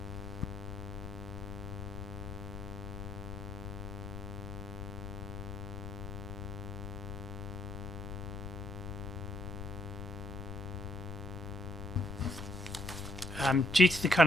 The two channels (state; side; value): noise; left; rumble, 8 dB below the sound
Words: Due to the